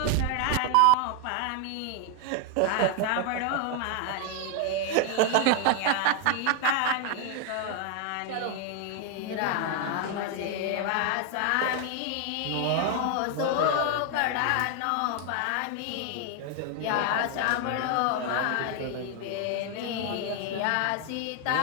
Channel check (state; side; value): different; both; correlation 0.00